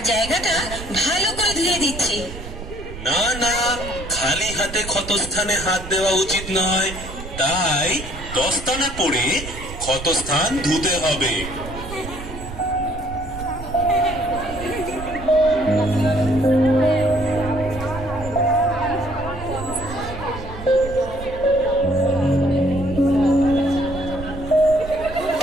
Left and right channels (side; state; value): right; noise; rumble, 11 dB below the sound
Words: জায়গাটা ভালো করে ধুয়ে দিচ্ছি। না না, খালি হাতে ক্ষতস্থানে হাত দেওয়া উচিত নয়, তাই দস্তানা পরে ক্ষতস্থান ধুতে হবে।